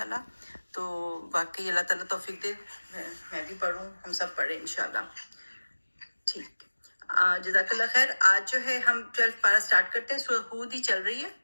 تو واقعی اللہ تعالیٰ توفیق دے. میں بھی پڑھوں، ہم سب پڑھیں انشاءاللہ. ٹھیک. جزاک اللہ خیر. آج جو ہے ہم 12 پارہ سٹارٹ کرتے ہیں. سورہ ہود ہی چل رہی ہے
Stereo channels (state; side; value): inverted; both; correlation -1.00